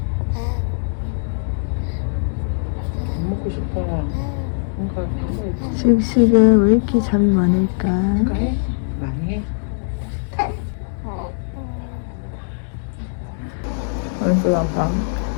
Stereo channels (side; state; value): right; silent; digital silence